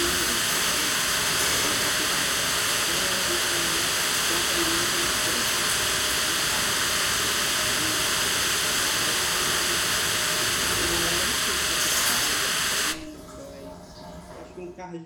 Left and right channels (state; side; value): identical; both; correlation 1.00